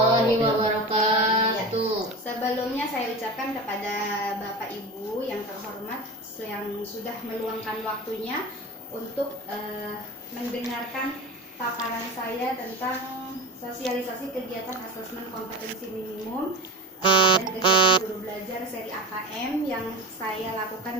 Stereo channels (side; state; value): both; normal; correlation 0.27